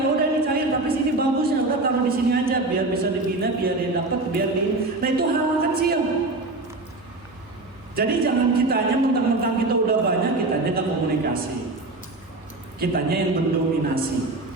udah ini cair, tapi sini bagusnya udah taruh di sini aja, biar bisa dibina, biar dia dapat, biar di. Nah itu hal kecil. Jadi jangan kitanya mentang-mentang kita udah banyak, kitanya nggak komunikasi, kitanya yang mendominasi.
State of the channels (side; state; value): left; quieter; 3.0 dB